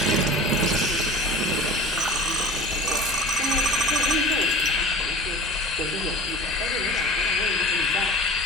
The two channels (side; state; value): both; normal; correlation 0.38